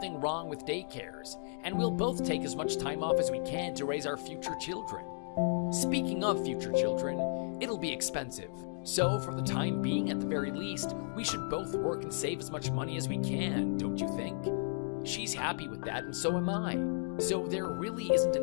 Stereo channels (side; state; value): right; silent; digital silence